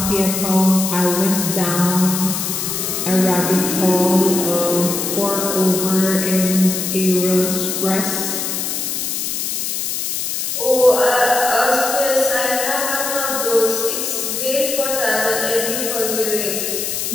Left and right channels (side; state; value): left; noise; hiss, 2 dB below the sound